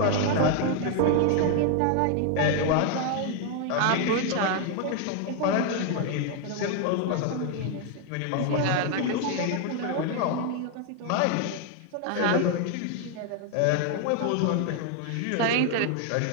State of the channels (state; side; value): different; both; correlation 0.00